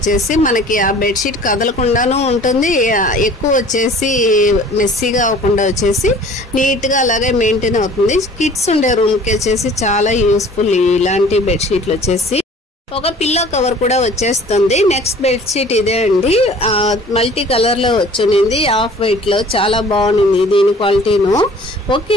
మనకి ఆ బెడ్షీట్ కదలకుండానూ ఉంటుంది, ఎక్కువ వచ్చేసి మెస్సీగా అవ్వకుండా వచ్చేసి నీట్గా అలాగే మెయింటైన్ అవుతుంది. కిడ్స్ ఉండే రూమ్కి వచ్చేసి చాలా యూస్ఫుల్ ఇలాంటి బెడ్షీట్లు వచ్చేసి. ఒక పిల్లో కవర్ కూడా వచ్చేస్తుంది. నెక్స్ట్ బెడ్షీట్ ఇదే అండి, మల్టీ కలర్లో వచ్చింది, ఆఫ్ వైట్లో. చాలా బాగుంది దీని క్వాలిటీను. ఓకే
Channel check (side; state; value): both; normal; correlation 0.49